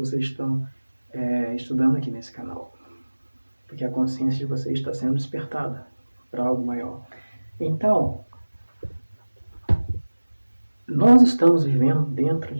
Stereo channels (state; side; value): inverted; both; correlation -1.00